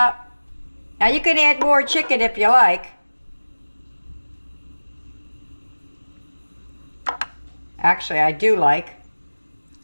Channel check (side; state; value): both; inverted; correlation -1.00